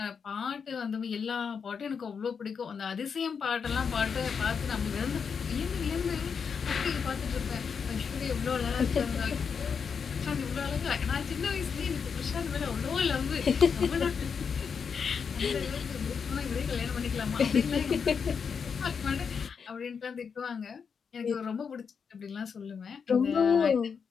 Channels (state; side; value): quieter; right; 6.2 dB